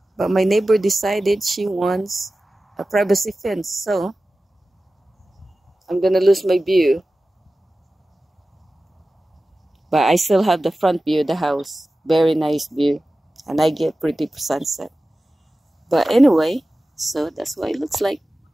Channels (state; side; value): normal; both; correlation 0.95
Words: but my neighbor decided she wants a privacy fence, so I'm gonna lose my view. But I still have the front view of the house. Very nice view, and I get pretty sunset. But anyway, so that's what it looks like.